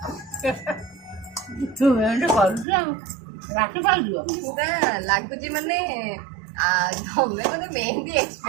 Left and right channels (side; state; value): left; drops out; at 2.7 s